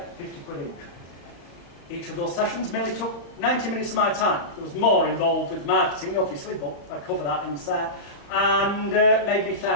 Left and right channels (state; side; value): late; right; 35 ms